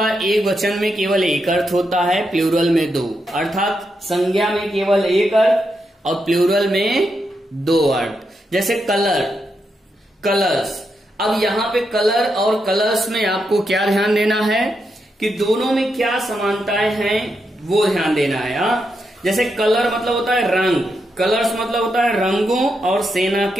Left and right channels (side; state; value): both; normal; correlation 0.83